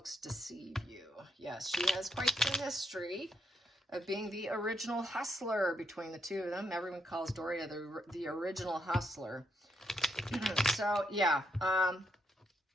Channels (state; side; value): normal; both; correlation 0.77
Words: deceive you. Yes, she has quite the history of being the original hustler between the two of them. Everyone calls Doria the original hustler. So, yeah.